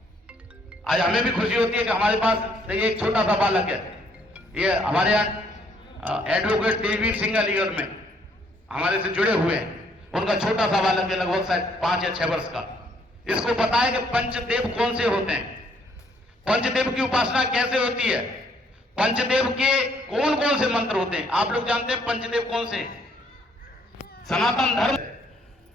आज हमें भी खुशी होती है कि हमारे पास एक छोटा सा बालक है। ये हमारे यहाँ एडवोकेट तेजवीर सिंह अलीगढ़ में हमारे से जुड़े हुए हैं। उनका छोटा सा बालक है, लगभग शायद 5 या 6 वर्ष का। इसको पता है कि पंचदेव कौन से होते हैं, पंचदेव की उपासना कैसे होती है, पंचदेव के कौन कौन से मंत्र होते हैं। आप लोग जानते हैं पंचदेव कौन से? सनातन धर्म।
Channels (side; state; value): both; normal; correlation 0.67